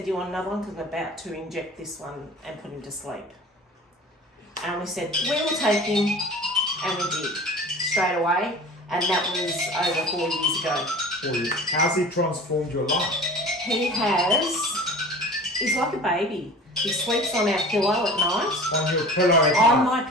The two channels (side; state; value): both; normal; correlation 0.40